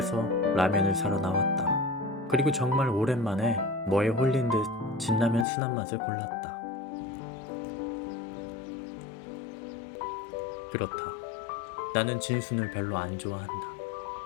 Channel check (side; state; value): right; drops out; at 5.5 s